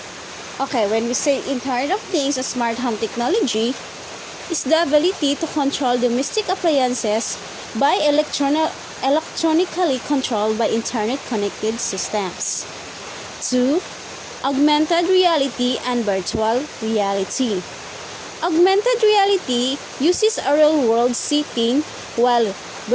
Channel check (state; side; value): identical; both; correlation 1.00